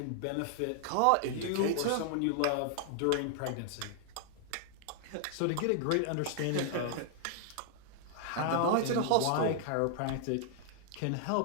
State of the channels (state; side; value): different; both; correlation -0.01